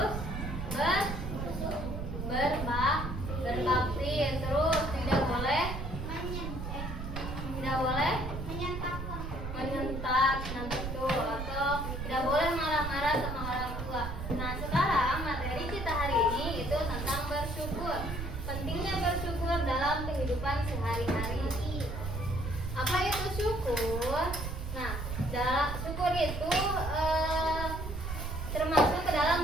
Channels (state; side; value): noise; right; rumble, 5 dB below the sound